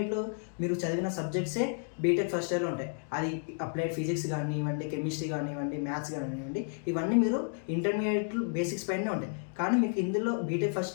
మీరు చదివిన సబ్జెక్ట్సే బీటెక్ ఫస్ట్ ఇయర్లో ఉంటాయి. అది అప్లైడ్ ఫిజిక్స్ కానివ్వండి, కెమిస్ట్రీ కానివ్వండి, మ్యాథ్స్ కానివ్వండి, ఇవన్నీ మీరు ఇంటర్మీడియట్లో బేసిక్స్ పైనే ఉంటాయి. కానీ మీకు ఇందులో బీటెక్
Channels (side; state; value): right; silent; 57 dB below the other